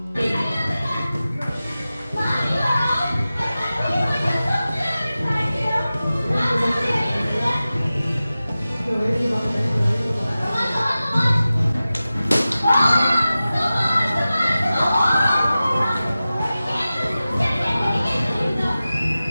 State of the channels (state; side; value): inverted; both; correlation -0.95